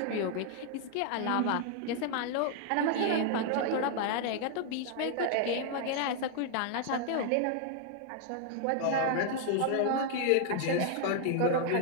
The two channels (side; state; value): both; different; correlation 0.00